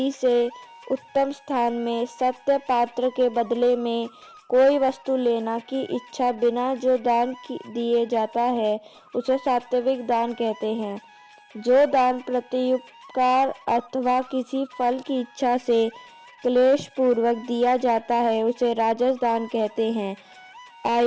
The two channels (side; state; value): both; identical; correlation 1.00